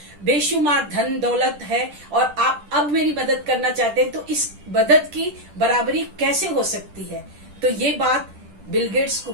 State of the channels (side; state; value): left; late; 10 ms